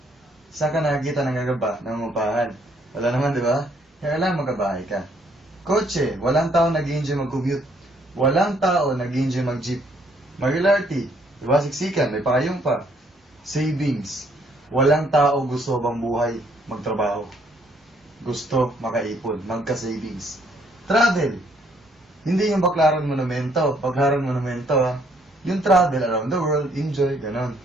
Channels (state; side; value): normal; both; correlation 0.67